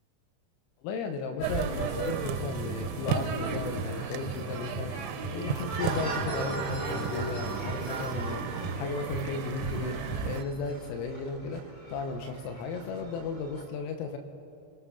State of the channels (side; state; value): right; late; 30 ms